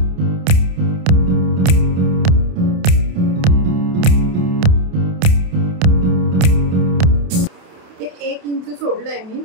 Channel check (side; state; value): left; late; 28 ms